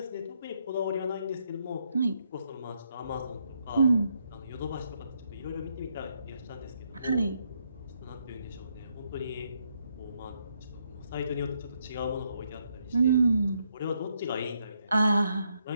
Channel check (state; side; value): inverted; both; correlation -0.76